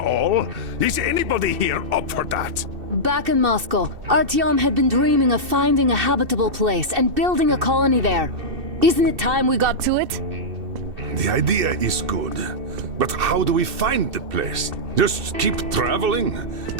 Is anybody here up for that? Back in Moscow, Artyom had been dreaming of finding a habitable place and building a colony there. Isn't it time we got to it? The idea is good. But how do we find the place? Just keep traveling?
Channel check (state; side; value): late; left; 2.7 ms